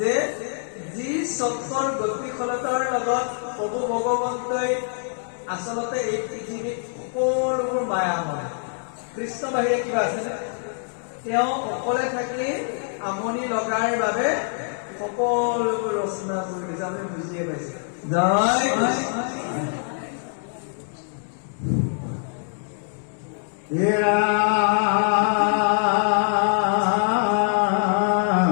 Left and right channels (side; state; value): right; silent; 62 dB below the other